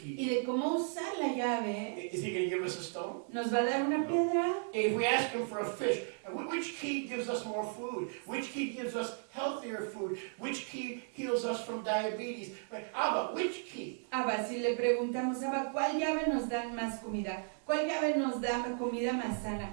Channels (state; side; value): silent; left; 54 dB below the other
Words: key, de cómo usar la llave, is He going to give us a stone? nos va a dar una piedra. If we ask Him for a fish, which key gives us more food? Which key gives us healthier food? Which key heals us from diabetes? Abba, which key? Abba, si le preguntamos, Abba, ¿cuál llave nos da más comida? ¿Cuál llave nos da comida más sana?